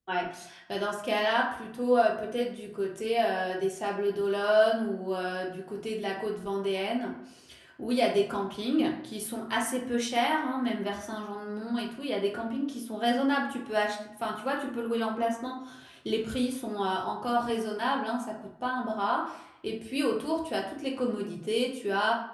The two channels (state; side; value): identical; both; correlation 1.00